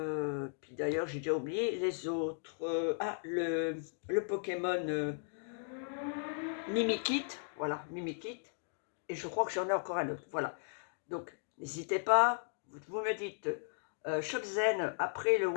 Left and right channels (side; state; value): right; silent; digital silence